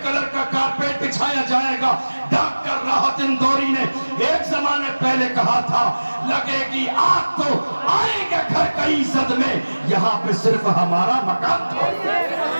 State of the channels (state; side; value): inverted; both; correlation -1.00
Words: کلر کا کارپیٹ بچھایا جائے گا۔ ڈاکٹر راحت اندوری نے ایک زمانے پہلے کہا تھا لگے گی آگ تو آئیں گے گھر کئی زد میں، یہاں پہ صرف ہمارا مکان تھا۔